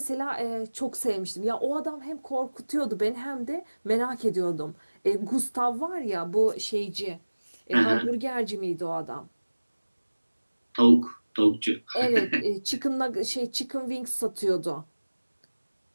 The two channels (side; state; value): both; inverted; correlation -1.00